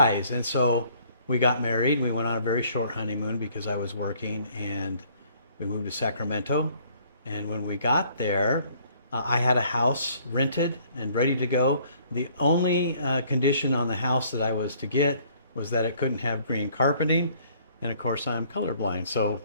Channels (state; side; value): inverted; both; correlation -0.60